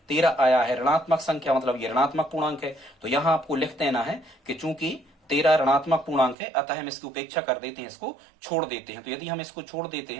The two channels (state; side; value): drops out; left; at 6.4 s